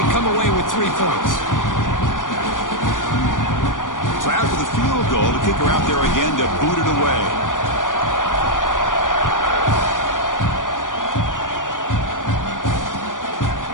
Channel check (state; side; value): late; right; 0.88 ms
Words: come away with 3 points. So after the field goal, the kicker out there again to boot it away.